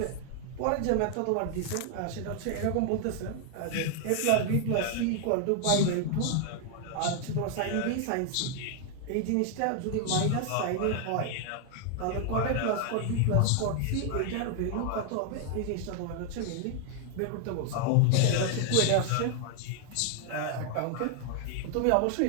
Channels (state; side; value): different; both; correlation 0.00